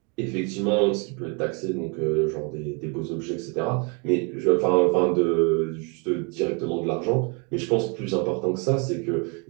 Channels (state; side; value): quieter; left; 33.8 dB